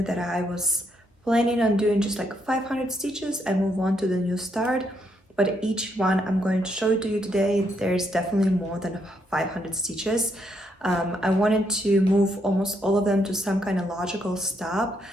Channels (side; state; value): both; normal; correlation 0.76